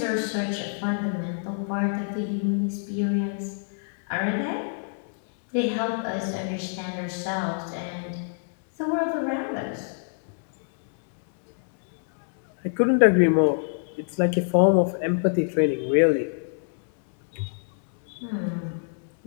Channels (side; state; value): right; silent; 61 dB below the other